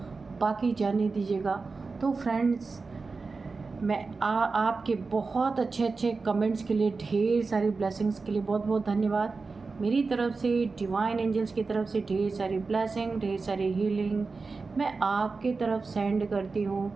बाकी जाने दीजिएगा। तो फ्रेंड्स, मैं आपके बहुत अच्छे कमेंट्स के लिए, ढेर सारी ब्लेसिंग्स के लिए बहुत बहुत धन्यवाद। मेरी तरफ से, डिवाइन एंजल्स की तरफ से ढेर सारी ब्लेसिंग, ढेर सारी हीलिंग मैं आपके तरफ सेंड करती हूँ।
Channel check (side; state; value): left; quieter; 4.2 dB